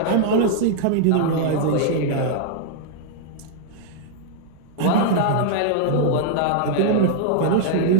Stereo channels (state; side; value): different; both; correlation -0.01